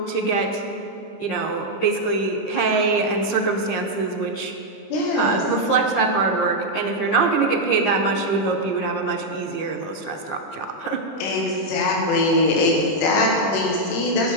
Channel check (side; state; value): right; late; 20 ms